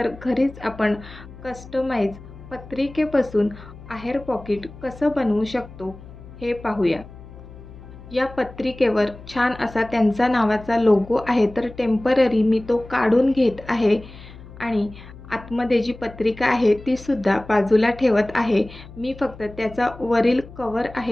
घरीच आपण कस्टमाइज पत्रिकेपासून आहेर पॉकेट कसं बनवू शकतो हे पाहूया. या पत्रिकेवर छान असा त्यांचा नावाचा लोगो आहे, तर टेम्पररी मी तो काढून घेत आहे आणि आतमध्ये जी पत्रिका आहे ती सुद्धा बाजूला ठेवत आहे. मी फक्त त्याचा वरील कवर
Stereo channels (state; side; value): noise; left; hum, 17 dB below the sound